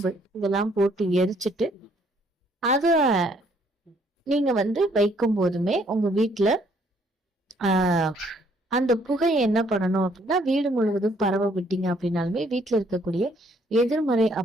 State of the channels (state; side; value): normal; both; correlation 0.65